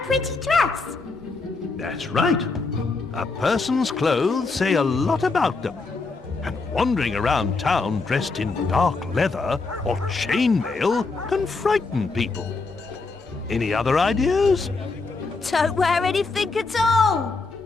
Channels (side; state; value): right; quieter; 4.0 dB